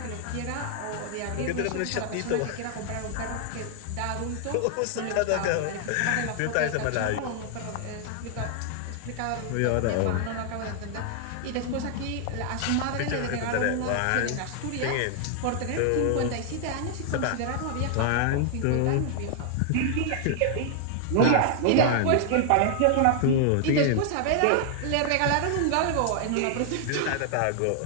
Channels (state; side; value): different; both; correlation 0.00